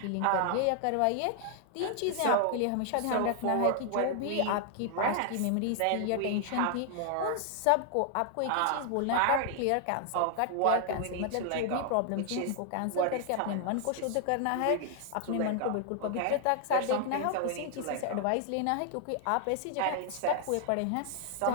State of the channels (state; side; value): different; both; correlation 0.00